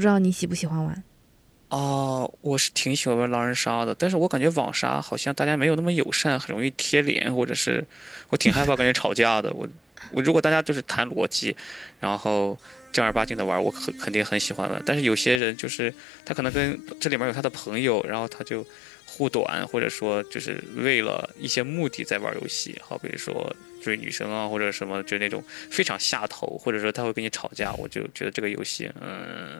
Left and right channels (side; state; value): right; drops out; at 15.4 s